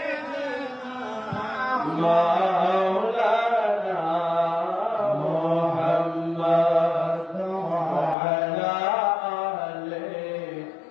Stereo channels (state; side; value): drops out; right; at 8.2 s